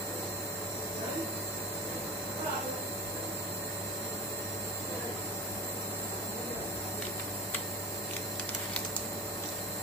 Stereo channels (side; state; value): both; normal; correlation 0.32